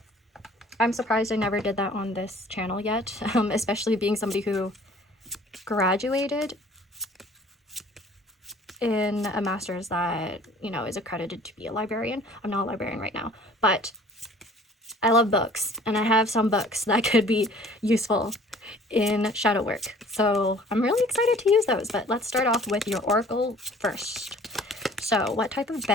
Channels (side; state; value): both; normal; correlation 0.52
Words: I'm surprised I never did that on this channel yet, especially being somebody who graduated in a master's that, you know, is accredited to be a librarian. I'm not a librarian right now, but I love books, and I have some books that could be useful in shadow work. So I'm really excited to use those, but let's start off with your oracle first. So what type of